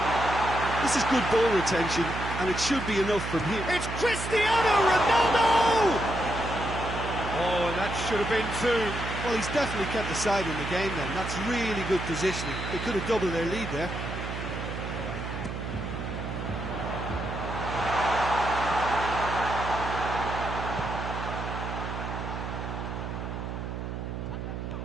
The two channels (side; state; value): right; noise; hum, 6 dB below the sound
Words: This is good ball retention, and it should be enough from here. It's Cristiano Ronaldo! Oh, and that should have been two. Well, he's definitely kept the side in the game then. That's really good positioning. They could have doubled their lead there.